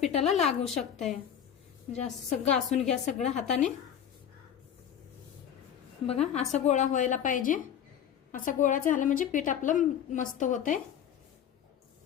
लागू शकतंय। म्हणजे असं घासून घ्या सगळं हाताने। बघा असा गोळा व्हायला पाहिजे। असा गोळा झाला म्हणजे पीठ आपलं मस्त होतंय,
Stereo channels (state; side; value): quieter; right; 9.1 dB